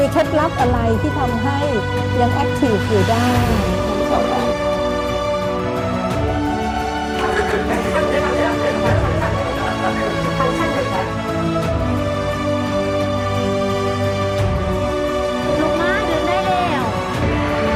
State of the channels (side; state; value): both; identical; correlation 1.00